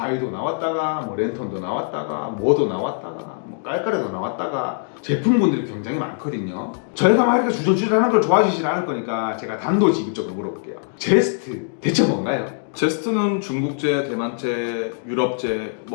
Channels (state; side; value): silent; right; digital silence